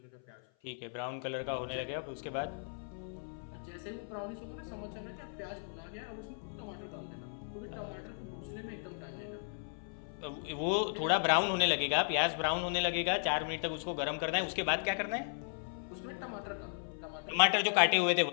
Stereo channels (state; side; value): silent; right; 54 dB below the other